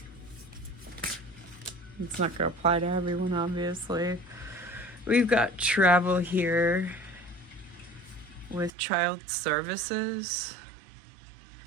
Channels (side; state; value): left; drops out; at 8.7 s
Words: It's not going to apply to everyone, obviously. We've got travel here with child services.